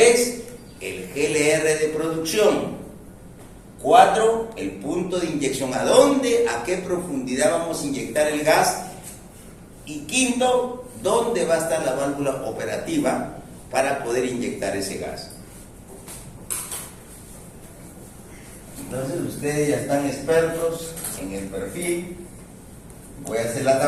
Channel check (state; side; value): identical; both; correlation 1.00